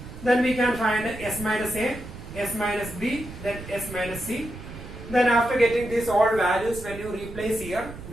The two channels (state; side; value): noise; right; rumble, 13 dB below the sound